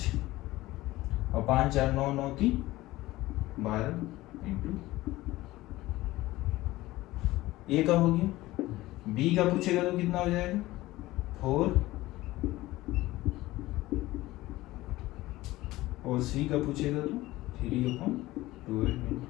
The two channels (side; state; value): right; quieter; 17.8 dB